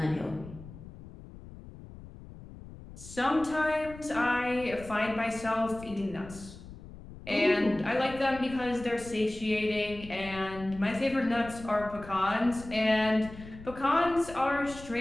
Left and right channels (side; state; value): left; noise; rumble, 16 dB below the sound